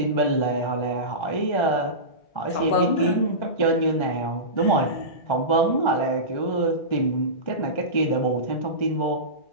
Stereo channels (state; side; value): late; right; 1.3 ms